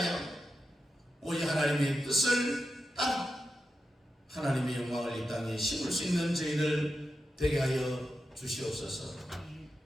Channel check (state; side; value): normal; both; correlation 0.89